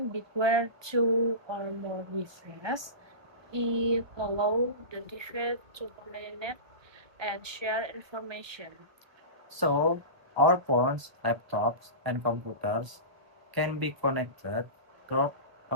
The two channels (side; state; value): left; late; 1.2 ms